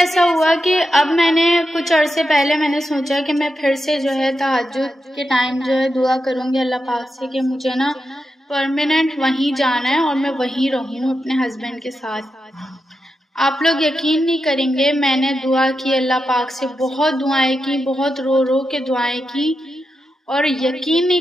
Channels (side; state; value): both; normal; correlation 0.88